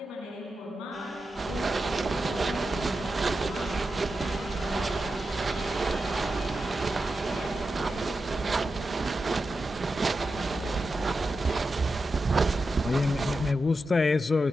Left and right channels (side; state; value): both; normal; correlation 0.90